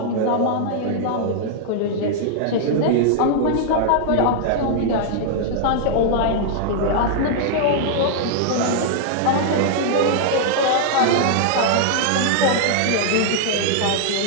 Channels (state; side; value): different; both; correlation -0.01